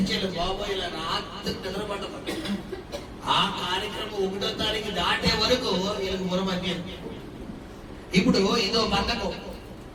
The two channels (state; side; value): identical; both; correlation 1.00